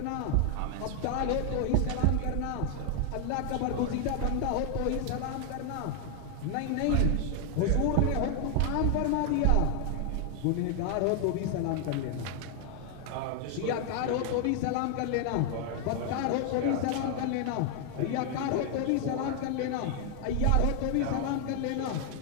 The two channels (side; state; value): both; different; correlation 0.00